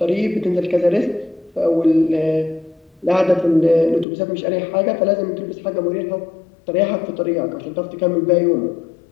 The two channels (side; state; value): right; drops out; at 4.0 s